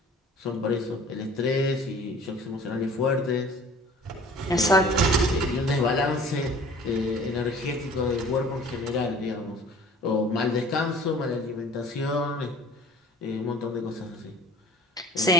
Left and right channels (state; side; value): normal; both; correlation 0.47